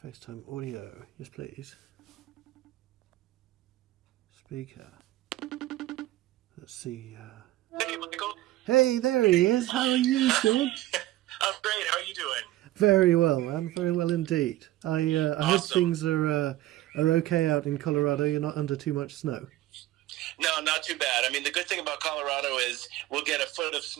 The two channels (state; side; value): quieter; left; 15.7 dB